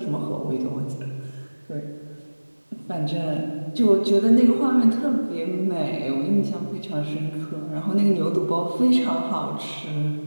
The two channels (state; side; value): inverted; both; correlation -1.00